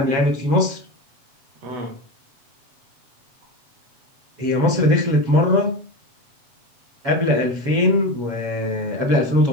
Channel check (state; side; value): late; left; 7.3 ms